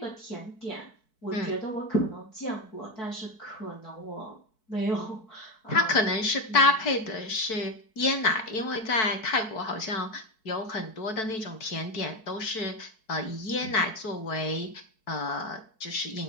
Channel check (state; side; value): late; right; 4.6 ms